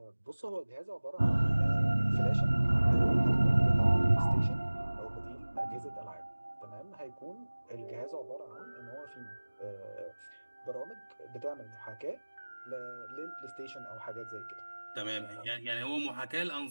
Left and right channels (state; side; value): inverted; both; correlation -1.00